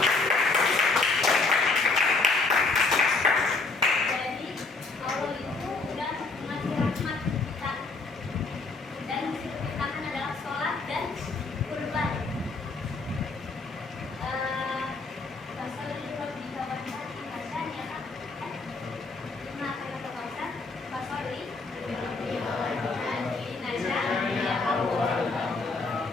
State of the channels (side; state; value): right; quieter; 3.7 dB